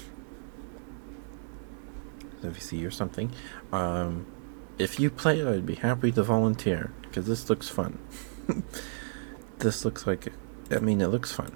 VC or something. Um, if you play it, I'd be happy to volunteer because this looks fun. This looks like, I mean, it looks fun.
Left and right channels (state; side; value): silent; left; digital silence